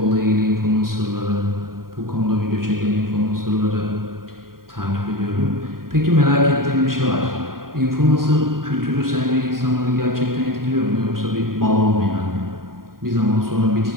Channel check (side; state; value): left; late; 0.92 ms